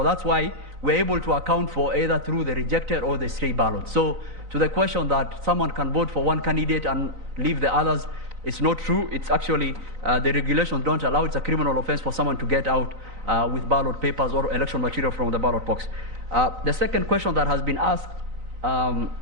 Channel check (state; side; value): late; left; 3.9 ms